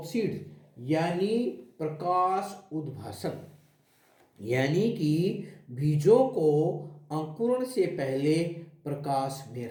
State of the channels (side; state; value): both; identical; correlation 1.00